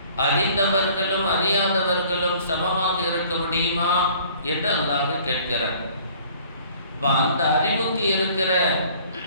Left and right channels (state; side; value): inverted; both; correlation -0.53